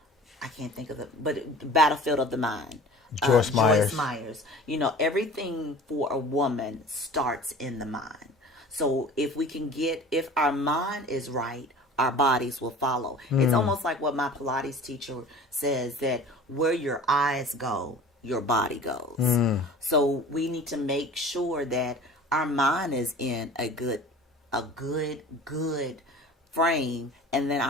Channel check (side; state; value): both; normal; correlation 0.42